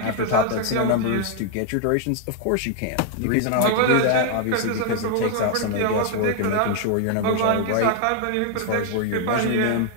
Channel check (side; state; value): both; different; correlation 0.00